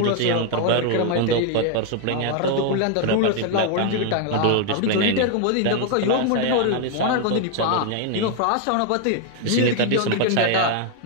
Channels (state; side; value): different; both; correlation 0.00